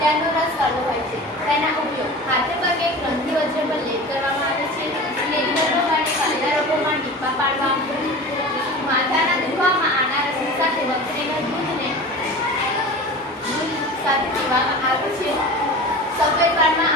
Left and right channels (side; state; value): both; normal; correlation 0.35